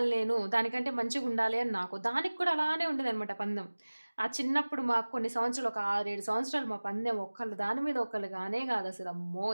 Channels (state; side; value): inverted; both; correlation -1.00